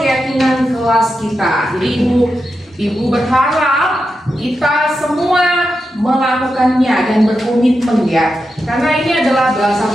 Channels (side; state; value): both; normal; correlation 0.88